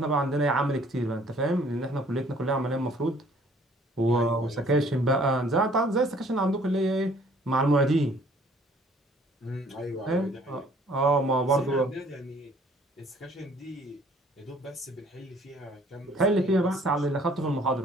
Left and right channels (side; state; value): both; normal; correlation 0.58